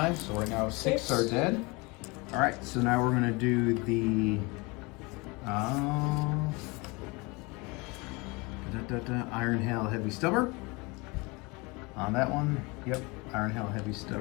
so right now 6 are dead. All right, so now we're going to do the Iron Hail Heavy Stubber. On that one, yep, Iron Hail Heavy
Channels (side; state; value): right; quieter; 26.6 dB